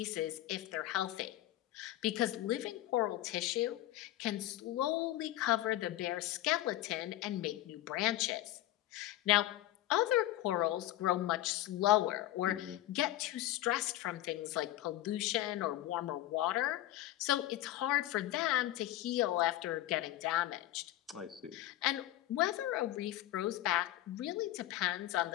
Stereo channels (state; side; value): quieter; right; 14.9 dB